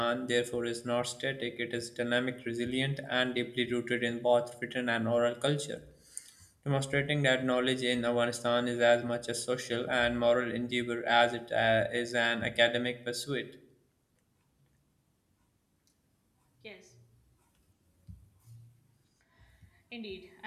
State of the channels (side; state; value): both; identical; correlation 1.00